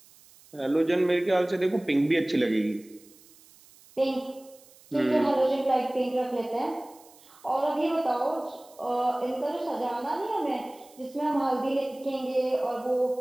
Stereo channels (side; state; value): right; noise; hiss, 25 dB below the sound